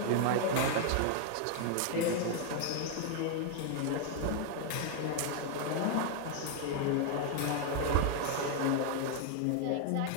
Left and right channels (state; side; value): different; both; correlation 0.00